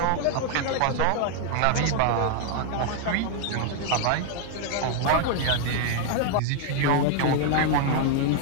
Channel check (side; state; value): both; different; correlation 0.00